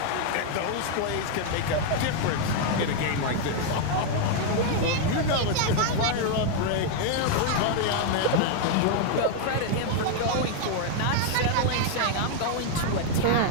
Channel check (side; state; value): both; different; correlation 0.00